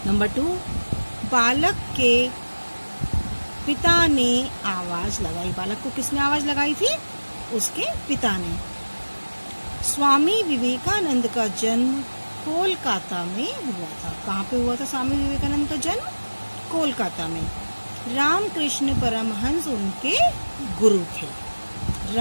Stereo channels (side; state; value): both; inverted; correlation -1.00